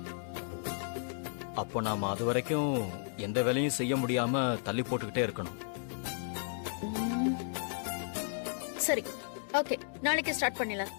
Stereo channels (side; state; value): right; silent; digital silence